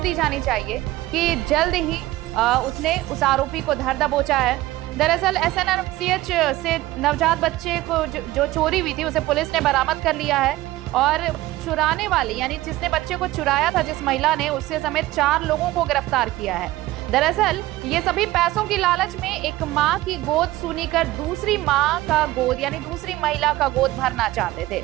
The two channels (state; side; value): quieter; left; 17.2 dB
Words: जानी चाहिए कि जल्द ही उसने उस आरोपी को धर दबोचा है। दरअसल एसएनएमसीएच से नवजात बच्चे को जो चोरी हुई थी उसे पुलिस ने बरामद कर लिया है और चुराने वाली यानी जिसने बच्चे को चुराया था, जिस महिला ने, उससे समेत 4 लोगों को गिरफ्तार किया है। दरअसल ये सभी पैसों की लालच में एक मां की गोद सुनी कर दूसरी मां का गोद यानी दूसरी महिला का गोद भरना चाहते थे।